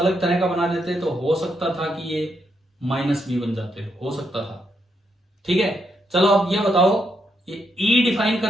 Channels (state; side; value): normal; both; correlation 0.79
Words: तरह का बना देते तो हो सकता था कि ये माइनस बी बन जाते, हो सकता था। ठीक है, चलो अब ये बताओ, ये ई डिफाइन